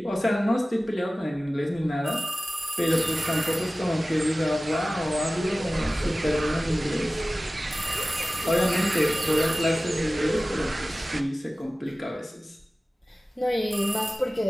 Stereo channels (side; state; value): both; normal; correlation 0.96